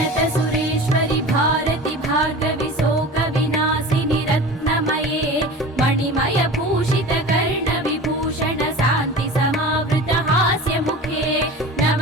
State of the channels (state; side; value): normal; both; correlation 0.35